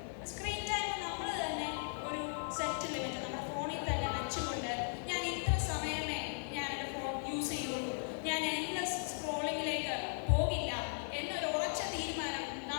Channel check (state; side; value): silent; right; 53 dB below the other